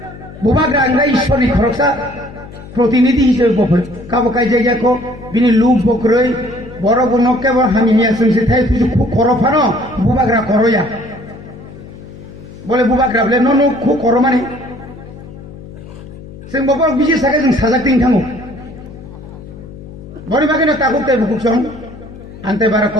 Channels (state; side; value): noise; left; hum, 16 dB below the sound